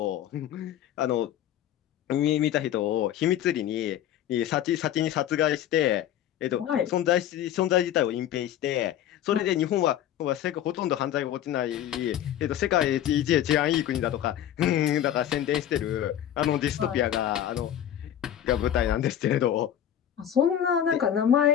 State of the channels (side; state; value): right; quieter; 11.0 dB